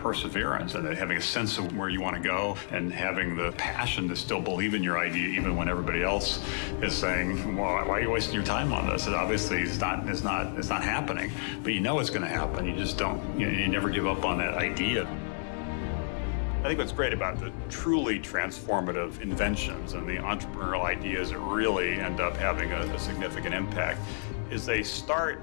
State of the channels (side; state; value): right; silent; digital silence